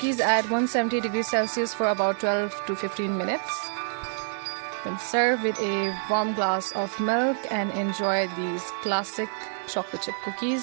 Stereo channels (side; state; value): left; silent; digital silence